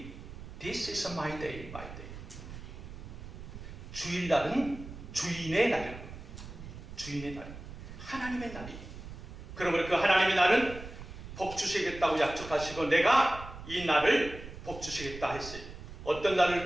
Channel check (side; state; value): right; noise; rumble, 12 dB below the sound